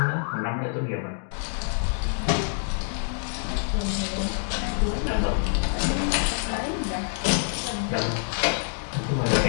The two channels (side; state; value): right; silent; 61 dB below the other